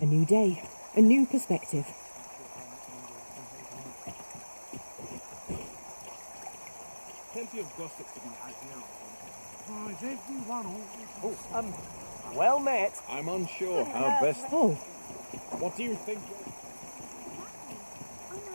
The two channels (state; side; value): inverted; both; correlation -1.00